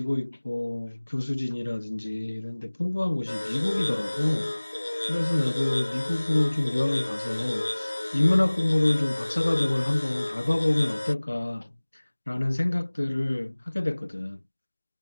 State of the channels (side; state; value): both; inverted; correlation -1.00